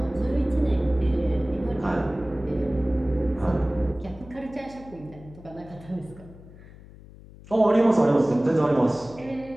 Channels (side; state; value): left; noise; hum, 20 dB below the sound